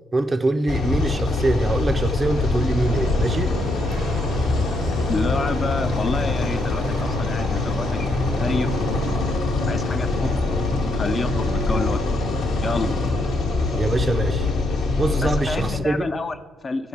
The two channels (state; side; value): normal; both; correlation 0.77